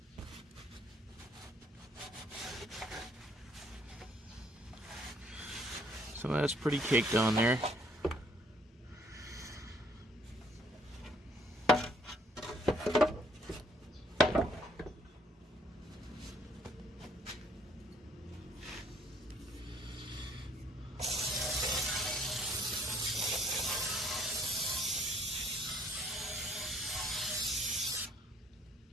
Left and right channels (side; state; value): both; normal; correlation 0.63